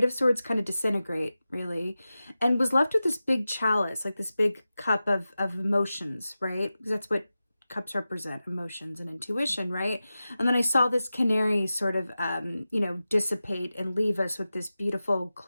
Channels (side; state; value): both; inverted; correlation -0.94